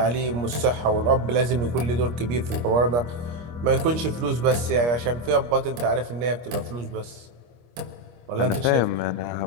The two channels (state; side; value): late; left; 25 ms